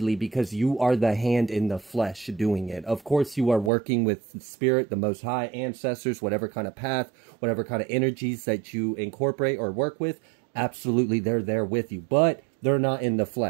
because you are the hand in the flesh doing it. Of course, you are working with Spirit, the Most High, ancestors, whatever kind of path, whatever kind of energies that you incorporate or work with, absolutely they're there with you, but they're not in the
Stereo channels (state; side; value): drops out; left; at 3.7 s